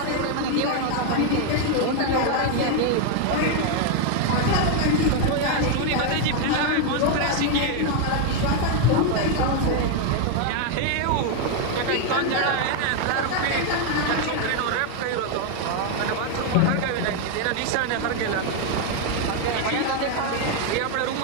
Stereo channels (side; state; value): both; different; correlation 0.01